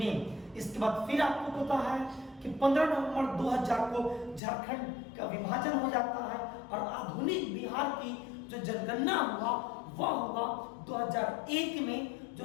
इसके बाद फिर आपको पता है कि 15 नवंबर 2000 को झारखंड का विभाजन हो जाता है और आधुनिक बिहार की जो जनगणना हुआ वह हुआ 2001 में, जो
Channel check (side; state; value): right; drops out; at 4.4 s